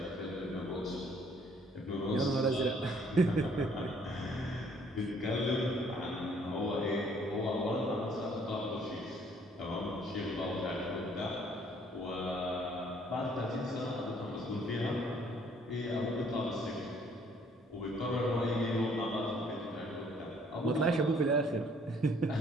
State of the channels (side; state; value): both; normal; correlation 0.61